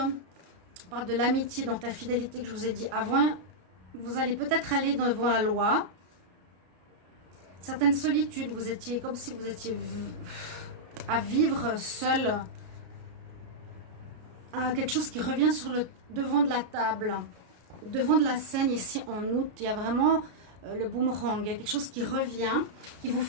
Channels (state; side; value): late; left; 33 ms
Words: parle de l'amitié, donc la fidélité que je vous ai dit avant. Vous allez peut-être aller devant la loi. Certaines solitudes, vous étiez comme si vous étiez à vivre seul. Quelque chose qui revient sur le devant de la table, devant de la scène ici en août. Il y a vraiment le boomerang. Il y a quelque chose qui revient, qu'il vous